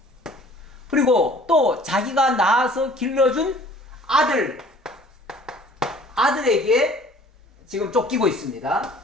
그리고 또 자기가 낳아서 길러준 아들에게 지금 쫓기고 있습니다.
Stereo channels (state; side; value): normal; both; correlation 0.51